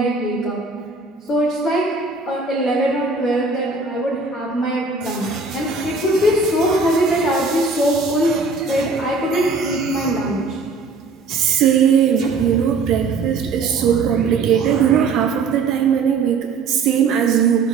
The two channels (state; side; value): quieter; left; 4.3 dB